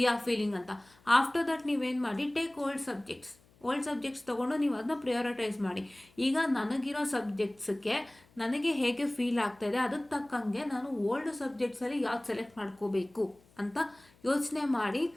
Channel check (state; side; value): noise; left; hum, 30 dB below the sound